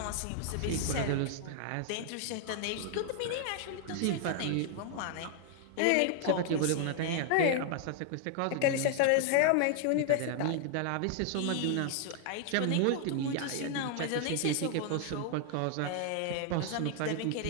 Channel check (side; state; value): both; different; correlation 0.00